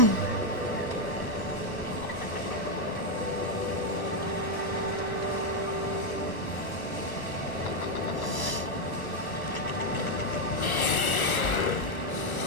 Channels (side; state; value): right; late; 1.1 ms